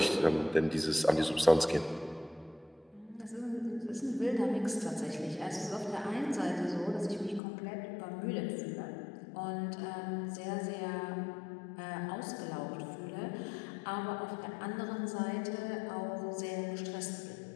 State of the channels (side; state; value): right; drops out; at 7.4 s